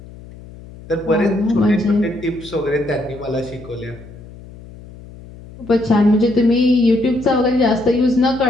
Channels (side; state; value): left; noise; hum, 18 dB below the sound